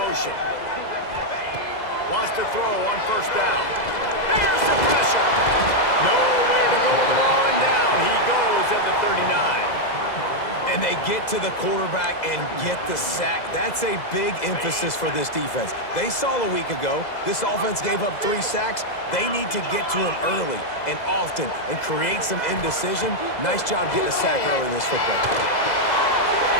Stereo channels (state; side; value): late; right; 2.0 ms